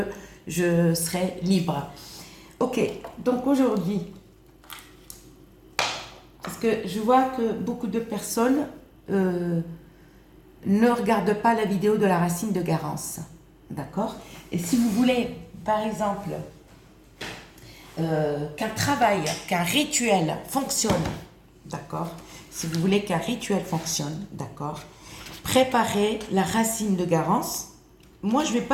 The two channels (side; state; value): both; identical; correlation 1.00